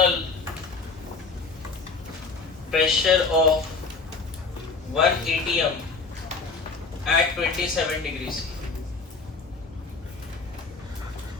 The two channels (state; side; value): quieter; right; 4.3 dB